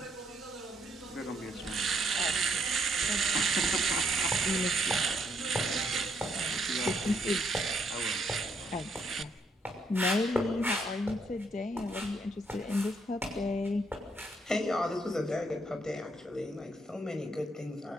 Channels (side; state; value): both; normal; correlation 0.72